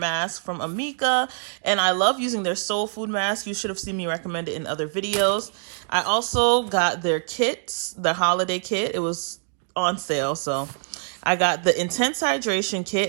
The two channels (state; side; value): silent; left; digital silence